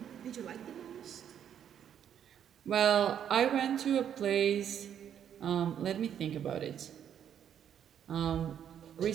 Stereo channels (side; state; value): left; quieter; 9.2 dB